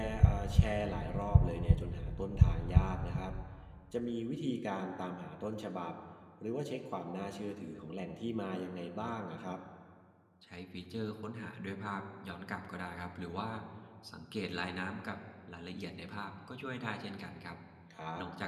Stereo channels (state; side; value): identical; both; correlation 1.00